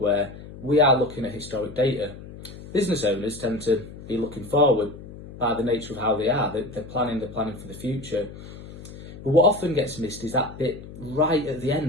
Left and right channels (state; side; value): noise; left; hum, 15 dB below the sound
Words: we are looking at historic data. Business owners tend to be looking forward by the nature of how they are. They're planning for the future. But what often gets missed is that bit right at the